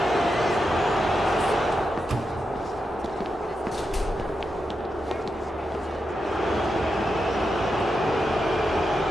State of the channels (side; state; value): both; normal; correlation 0.87